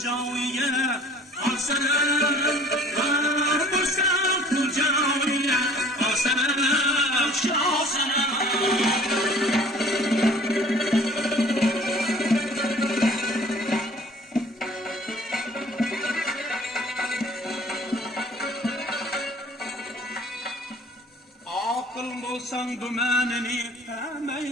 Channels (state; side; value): normal; both; correlation 0.50